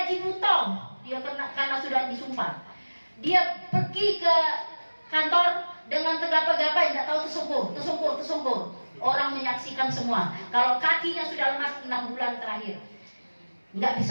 butong. Dia karena sudah disumpah. Dia pergi ke kantor dengan tegap-tegap, nggak tahu tersungkur. Orang menyaksikan semua. Kalau kakinya sudah lemas 6 bulan terakhir, nggak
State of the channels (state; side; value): inverted; both; correlation -1.00